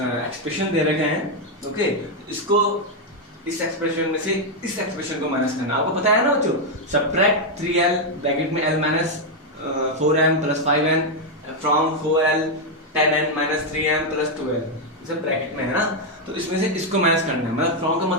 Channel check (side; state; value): both; normal; correlation 0.02